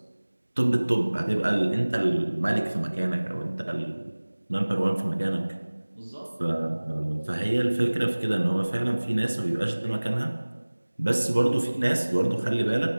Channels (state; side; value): inverted; both; correlation -1.00